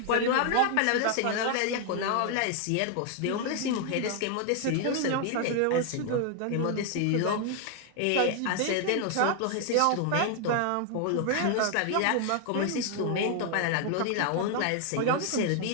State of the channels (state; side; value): different; both; correlation 0.00